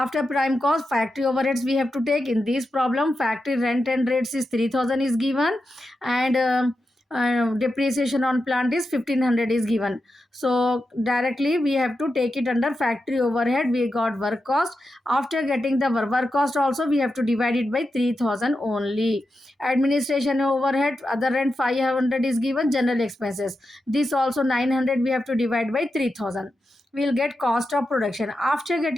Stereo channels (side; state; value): both; normal; correlation 0.89